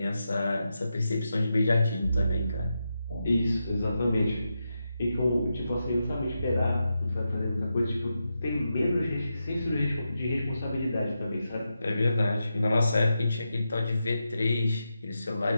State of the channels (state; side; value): inverted; both; correlation -0.88